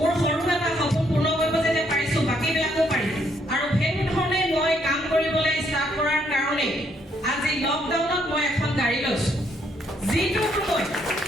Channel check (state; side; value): normal; both; correlation 0.71